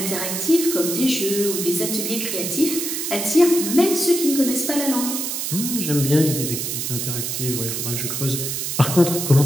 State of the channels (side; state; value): right; noise; hiss, 3 dB below the sound